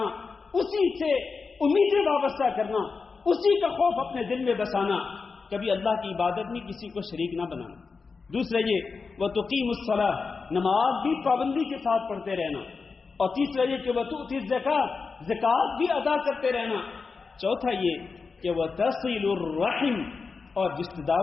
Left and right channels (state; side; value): quieter; right; 4.7 dB